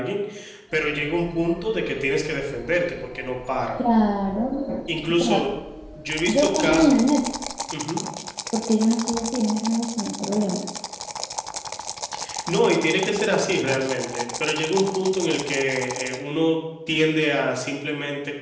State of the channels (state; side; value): identical; both; correlation 1.00